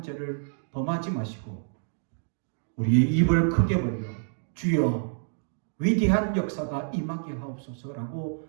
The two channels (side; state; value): left; silent; digital silence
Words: 죄를 범하지 마시고 우리의 입을 크게 벌려 주여 위대한 역사가 임하게